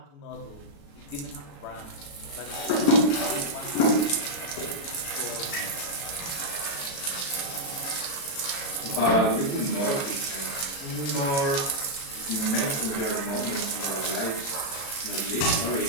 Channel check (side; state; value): right; late; 36 ms